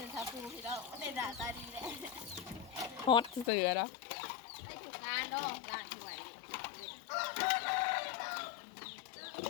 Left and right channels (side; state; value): right; drops out; at 3.5 s